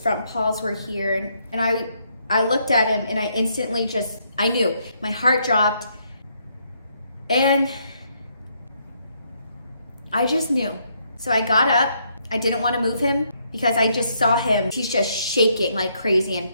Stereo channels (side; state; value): both; inverted; correlation -0.73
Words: paws were here. And I looked at him and I instantly I knew. My heart dropped. And I just knew. So I got up. I didn't want to move him because I just saw him. He's just shaking like crazy and